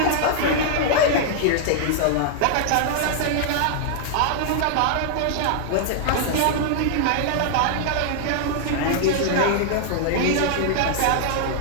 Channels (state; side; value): different; both; correlation 0.00